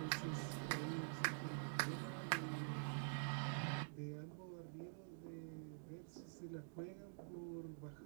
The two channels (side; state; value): left; silent; digital silence